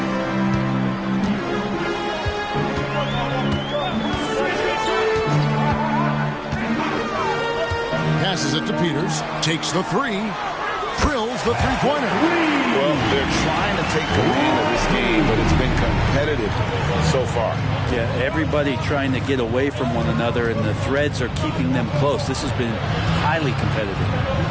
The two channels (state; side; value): identical; both; correlation 1.00